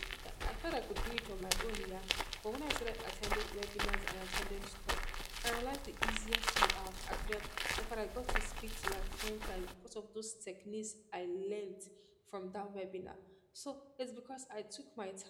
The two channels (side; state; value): both; identical; correlation 1.00